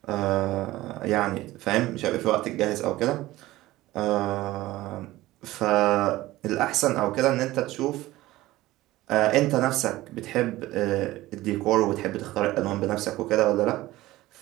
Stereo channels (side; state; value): left; quieter; 17.2 dB